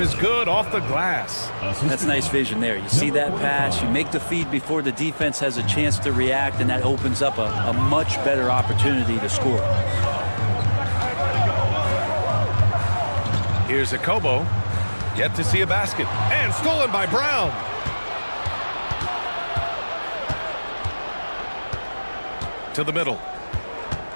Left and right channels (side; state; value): both; inverted; correlation -1.00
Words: is good off the glass. That's nice vision there. You see that pass, you make the feed before the defense has a chance to react, and that opens up a much better opportunity to score. Here's a Kobo, yet to see a basket, and stolen by Brown. To the middle.